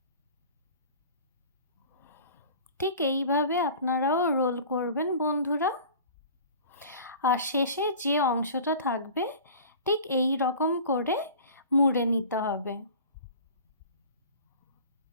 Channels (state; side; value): inverted; both; correlation -0.42